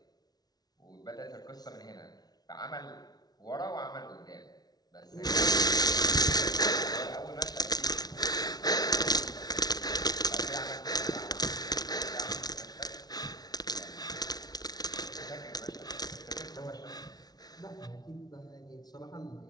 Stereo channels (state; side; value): late; right; 0.19 ms